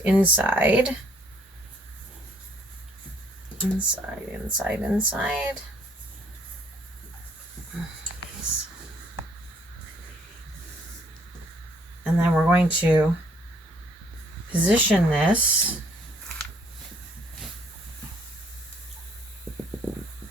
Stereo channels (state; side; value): normal; both; correlation 0.64